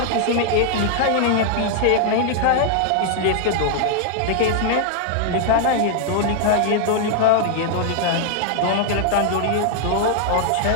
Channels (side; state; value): both; different; correlation -0.01